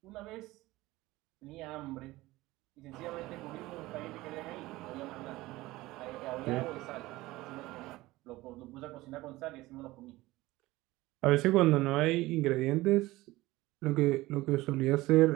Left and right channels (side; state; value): left; quieter; 18.8 dB